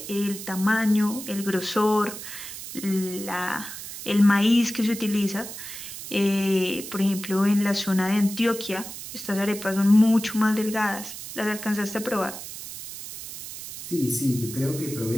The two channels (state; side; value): noise; right; hiss, 10 dB below the sound